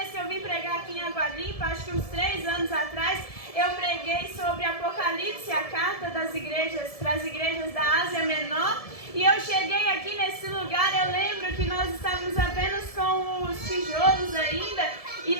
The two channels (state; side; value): late; right; 1.7 ms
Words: que eu vim pregar aqui em Água Limpa, acho que uns 3 anos atrás, eu preguei sobre Apocalipse, a carta das igrejas, para as igrejas da Ásia Menor. E eu cheguei aqui nesse lugar, eu lembro que nós estávamos apenas com os tijolos ainda. E